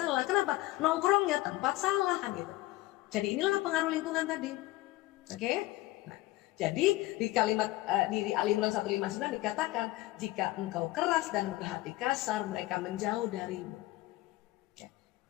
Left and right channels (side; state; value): right; quieter; 18.3 dB